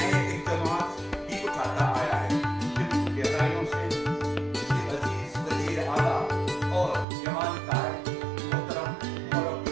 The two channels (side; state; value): left; drops out; at 7.1 s